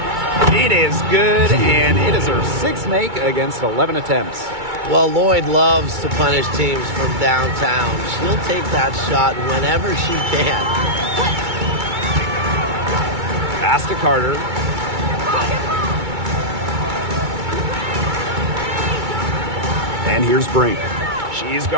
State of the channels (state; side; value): late; left; 2.2 ms